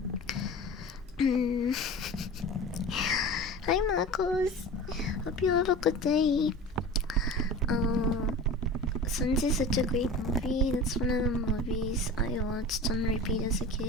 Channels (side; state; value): both; normal; correlation 0.34